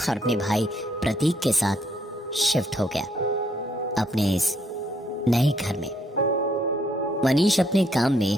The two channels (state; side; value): normal; both; correlation 0.71